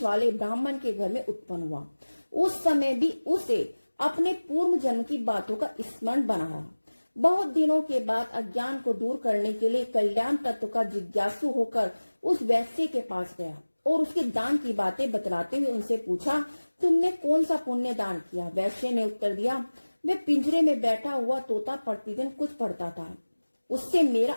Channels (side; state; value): both; inverted; correlation -1.00